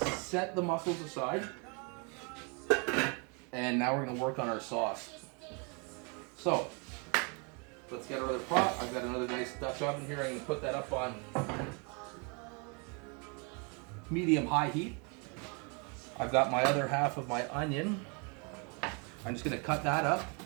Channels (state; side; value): quieter; left; 34.3 dB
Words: set the mussels aside, and now we're gonna work on our sauce. So, let's get our other pot. I've got another nice Dutch oven here. I'm gonna put that up on medium-high heat. I've got my other half of my onion. I'm just gonna cut that up